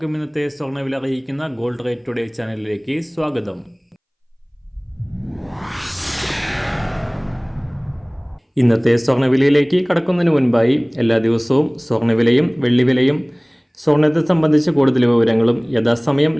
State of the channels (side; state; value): both; identical; correlation 1.00